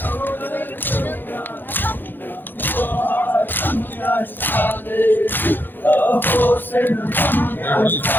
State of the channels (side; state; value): right; late; 0.093 ms